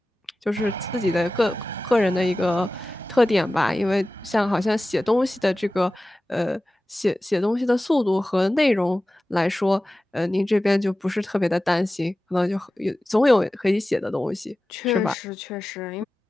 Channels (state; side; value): normal; both; correlation 0.95